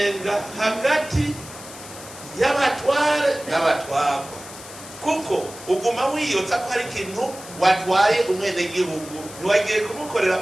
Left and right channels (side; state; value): left; noise; hiss, 15 dB below the sound